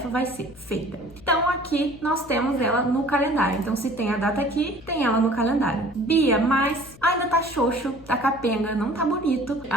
vai ser feita. Então aqui nós temos ela no calendário, então se tem a data aqui, tem ela no calendário. Bia, mas ainda tá xoxo, tá capenga, não tá bonito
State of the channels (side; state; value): left; noise; hum, 21 dB below the sound